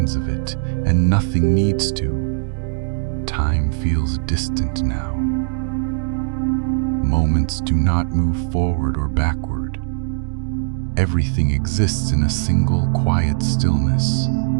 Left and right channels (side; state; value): left; silent; digital silence